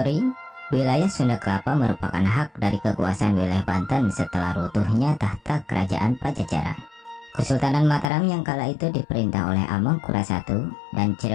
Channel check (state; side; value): drops out; right; at 8.1 s